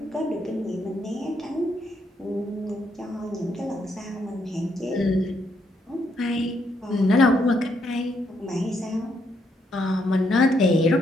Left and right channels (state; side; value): normal; both; correlation 0.75